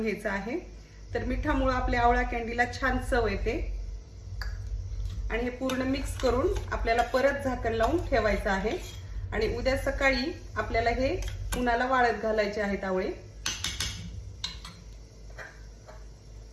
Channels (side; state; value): both; identical; correlation 1.00